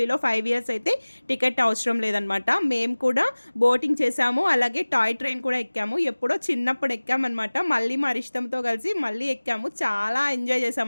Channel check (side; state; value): both; inverted; correlation -1.00